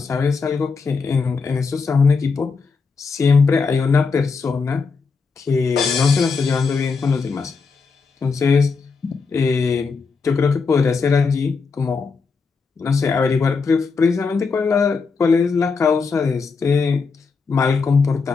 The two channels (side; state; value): right; quieter; 4.9 dB